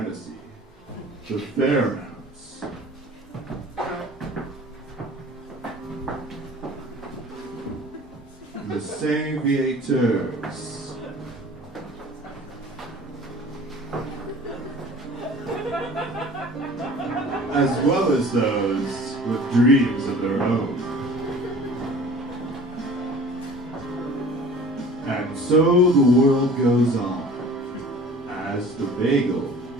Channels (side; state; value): both; normal; correlation 0.45